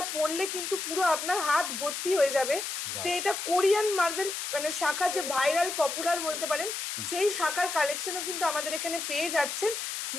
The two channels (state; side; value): noise; left; hiss, 4 dB below the sound